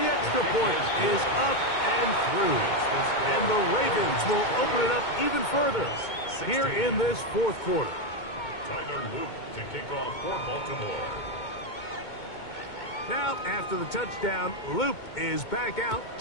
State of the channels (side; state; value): right; late; 2.2 ms